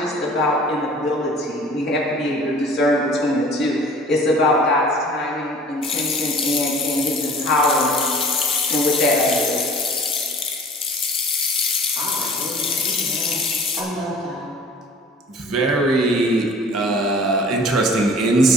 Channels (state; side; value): normal; both; correlation 0.47